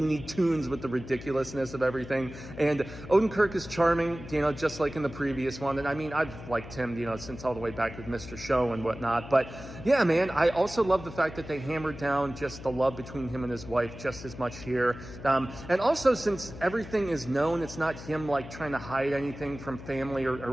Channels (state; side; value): noise; left; hum, 13 dB below the sound